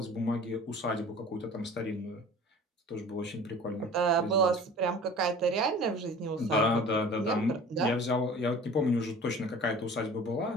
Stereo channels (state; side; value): normal; both; correlation 0.43